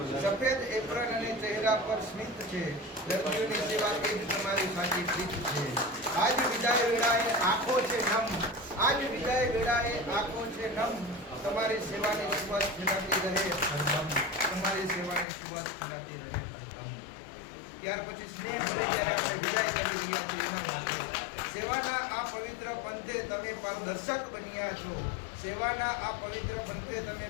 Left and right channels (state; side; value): drops out; right; at 15.2 s